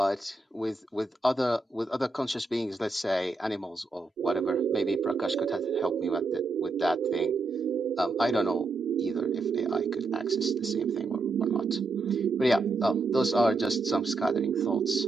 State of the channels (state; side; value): quieter; left; 3.5 dB